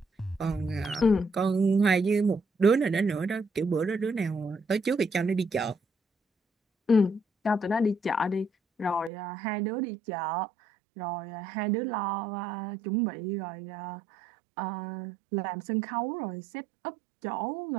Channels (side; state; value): left; drops out; at 9.1 s